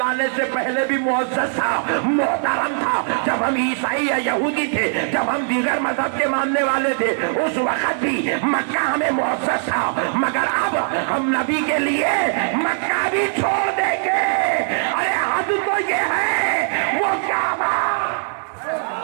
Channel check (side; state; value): left; silent; 65 dB below the other